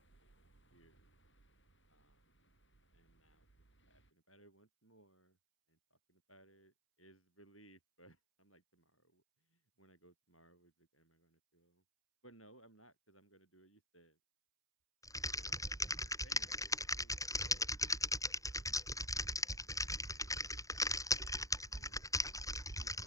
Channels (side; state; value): both; normal; correlation 0.15